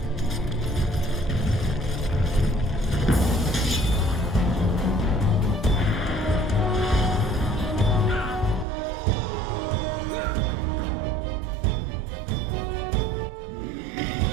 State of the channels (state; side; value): drops out; left; at 8.7 s